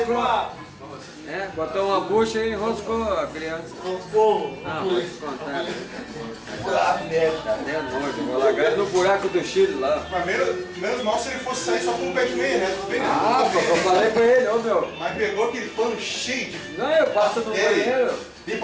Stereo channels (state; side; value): identical; both; correlation 1.00